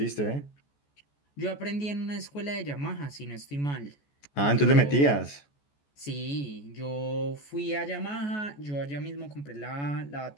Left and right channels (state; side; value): late; right; 14 ms